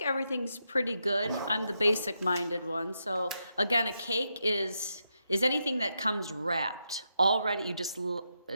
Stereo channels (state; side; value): inverted; both; correlation -0.84